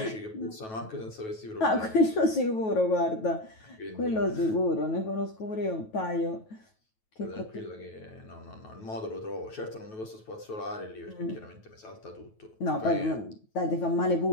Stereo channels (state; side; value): late; right; 9.2 ms